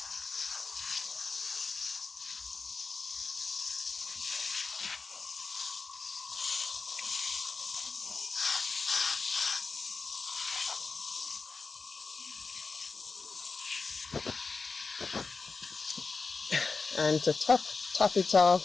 And to top it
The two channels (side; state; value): right; quieter; 4.3 dB